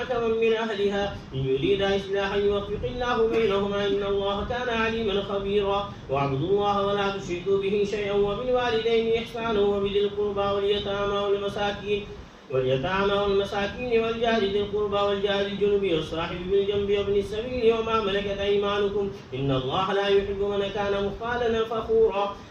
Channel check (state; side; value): identical; both; correlation 1.00